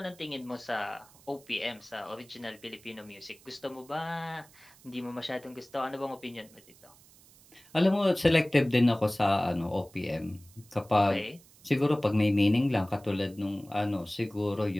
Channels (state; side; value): noise; right; hiss, 25 dB below the sound